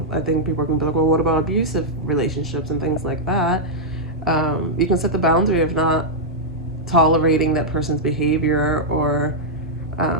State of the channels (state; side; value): normal; both; correlation -0.07